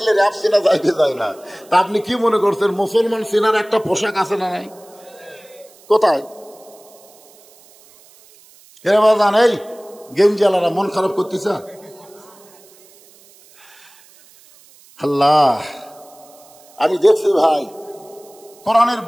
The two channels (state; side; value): noise; right; hiss, 26 dB below the sound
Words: র্যাব চেনা যায় কি যায় না? তা আপনি কি মনে করছেন মুসলমান চেনার একটা পোশাক আছে না নাই? কোথায়? জান এই গেঞ্জালারা মন খারাপ করতেছে। আল্লাহ, আমি দেখছি ভাই, কোরআনের